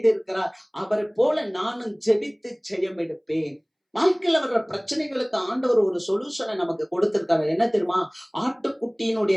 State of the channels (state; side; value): identical; both; correlation 1.00